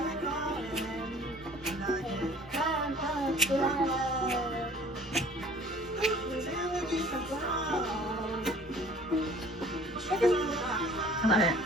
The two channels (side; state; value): both; normal; correlation 0.51